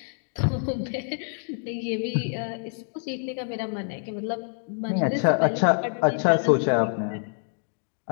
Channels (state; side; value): silent; right; 60 dB below the other